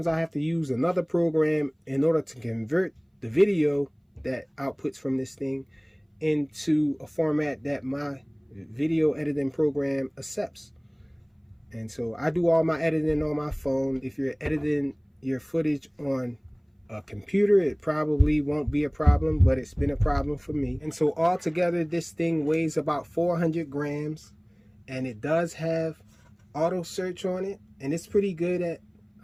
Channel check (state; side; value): identical; both; correlation 1.00